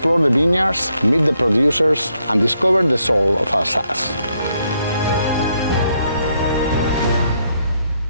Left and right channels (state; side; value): inverted; both; correlation -0.76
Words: the vineyards, meet the producers, and discover the soul of Alsace.